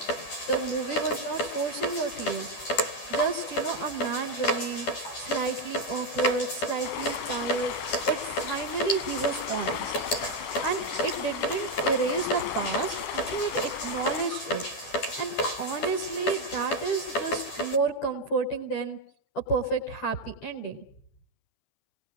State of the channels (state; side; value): late; right; 11 ms